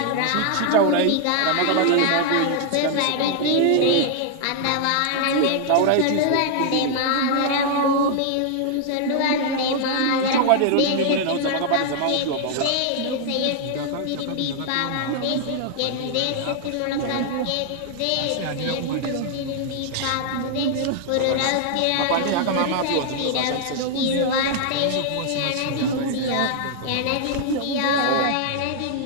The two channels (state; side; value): different; both; correlation 0.00